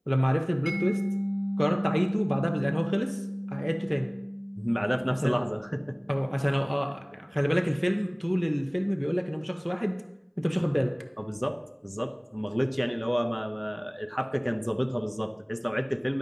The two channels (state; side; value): identical; both; correlation 1.00